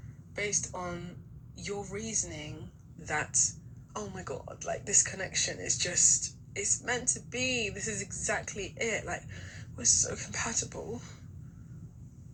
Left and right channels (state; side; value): identical; both; correlation 1.00